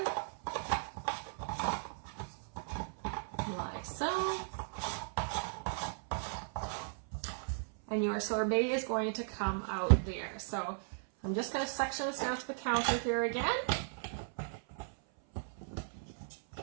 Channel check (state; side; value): silent; left; 53 dB below the other